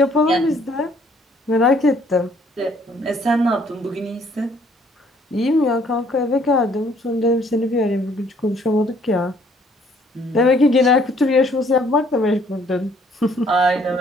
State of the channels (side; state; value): both; normal; correlation 0.63